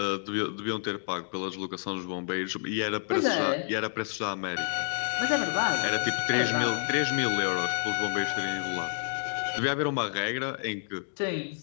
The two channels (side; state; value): right; silent; digital silence